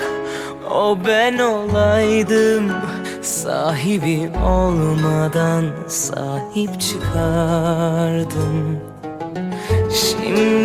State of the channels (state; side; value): identical; both; correlation 1.00